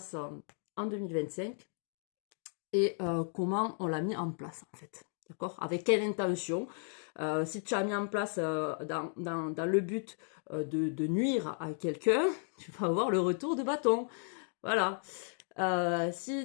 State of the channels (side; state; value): right; silent; 55 dB below the other